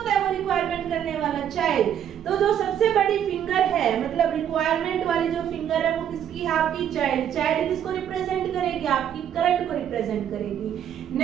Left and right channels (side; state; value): left; quieter; 9.7 dB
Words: है वो रिक्वायरमेंट करने वाला, चाइल्ड। तो जो सबसे बड़ी फिंगर है, मतलब रिक्वायरमेंट वाली जो फिंगर है वो किसकी है, आपकी चाइल्ड। चाइल्ड किसको रिप्रेजेंट करेगी, आपकी करंट को रिप्रेजेंट करेगी।